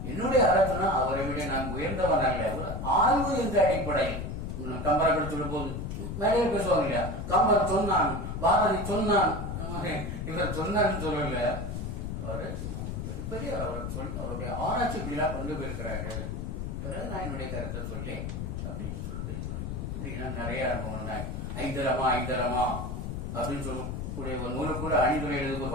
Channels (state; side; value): noise; left; rumble, 4 dB below the sound